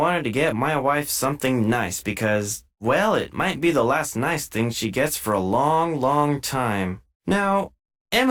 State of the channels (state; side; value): identical; both; correlation 1.00